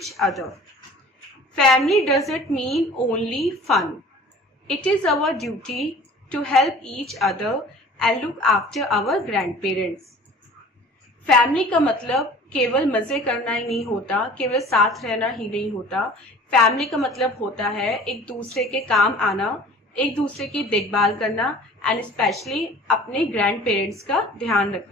other. Family doesn't mean only fun. It is our duty to help each other and look after our grandparents. Family का मतलब केवल मजे करना ही नहीं होता, केवल साथ रहना ही नहीं होता। Family का मतलब होता है एक दूसरे के काम आना, एक दूसरे की देखभाल करना एंड स्पेशली अपने ग्रैंड पेरेंट्स का ध्यान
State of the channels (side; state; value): both; normal; correlation 0.46